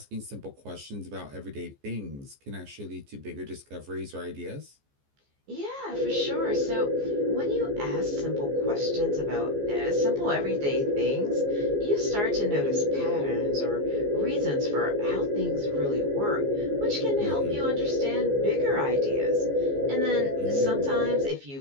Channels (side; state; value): left; late; 14 ms